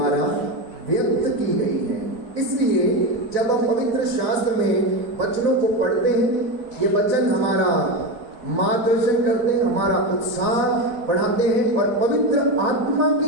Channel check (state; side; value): late; left; 3.9 ms